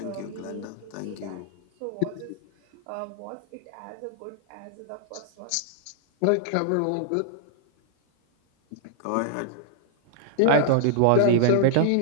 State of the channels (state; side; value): different; both; correlation -0.01